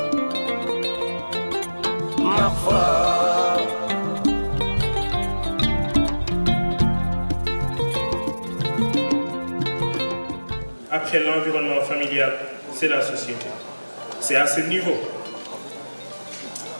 Après l'environnement familial, c'est la société. C'est à ce niveau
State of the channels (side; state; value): both; inverted; correlation -1.00